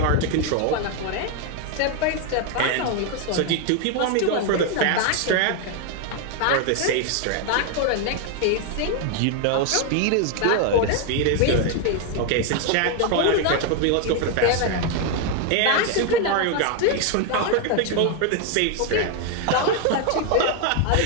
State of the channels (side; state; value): both; different; correlation 0.01